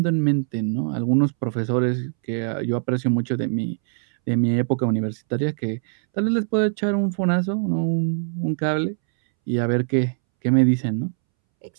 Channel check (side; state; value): left; silent; 64 dB below the other